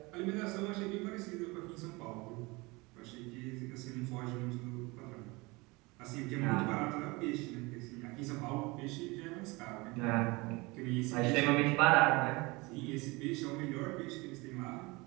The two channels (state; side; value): quieter; left; 24.6 dB